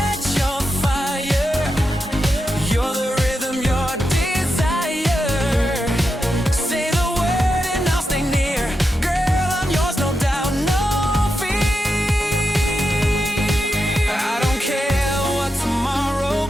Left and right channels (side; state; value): both; normal; correlation 0.87